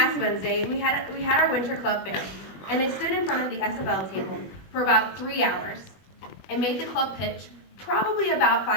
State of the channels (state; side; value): late; right; 21 ms